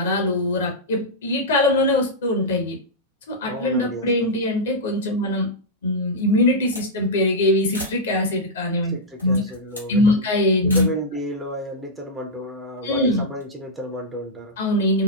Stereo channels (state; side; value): normal; both; correlation -0.08